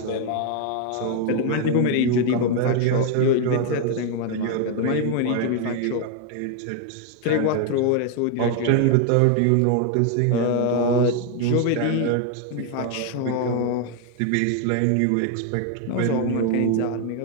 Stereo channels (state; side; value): different; both; correlation 0.00